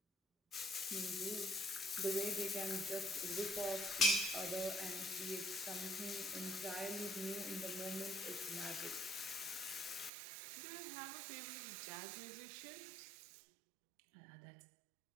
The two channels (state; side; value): drops out; left; at 10.1 s